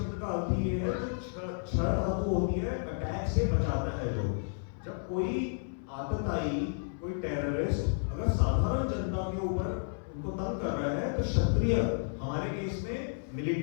का अर्थ ये है जो क्षण धातु होती है, अटैक से बचाता है। जो जब कोई आतताई, कोई टेररिस्ट अगर साधारण जनता के ऊपर उनको तंग कर रहा है, तो क्षत्रिय हमारे केस में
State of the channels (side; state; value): right; silent; 57 dB below the other